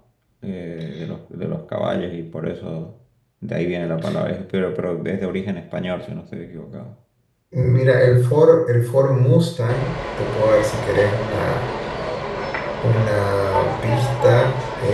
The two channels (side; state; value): both; identical; correlation 1.00